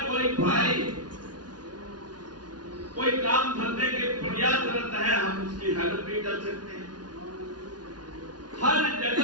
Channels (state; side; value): late; left; 0.69 ms